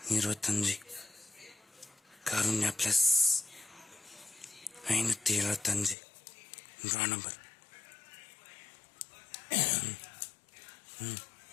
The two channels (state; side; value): drops out; right; at 6.0 s